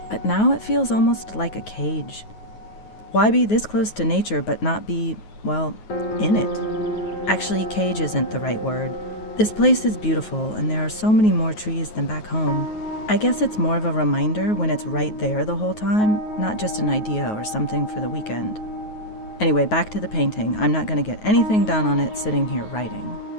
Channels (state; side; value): late; right; 9.4 ms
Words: But now it feels almost like a cage. Why be this close to nature but not be, well, in it? Actually, cage isn't the right word. This place is beautiful, and there are so many more trees than back home. I guess it's more of a reminder when it's right there the whole time, not just an idea or something for the weekend. Anyway, back to the painting. I'm not going to get anything done on it sitting here writing.